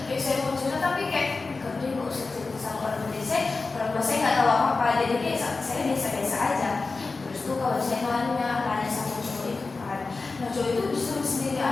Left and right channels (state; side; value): quieter; right; 3.9 dB